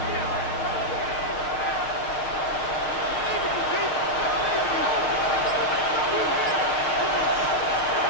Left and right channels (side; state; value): right; late; 6.5 ms